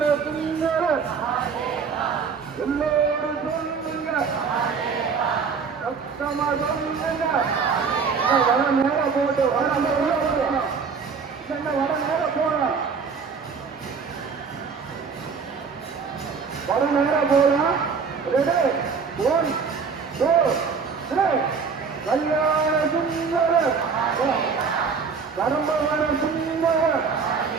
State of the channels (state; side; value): quieter; left; 5.5 dB